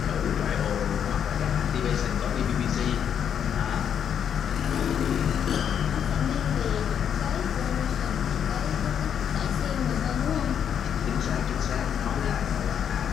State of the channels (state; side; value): quieter; right; 8.4 dB